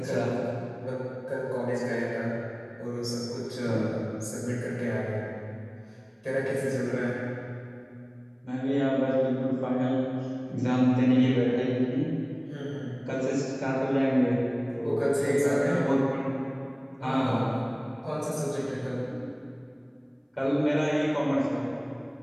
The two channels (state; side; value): identical; both; correlation 1.00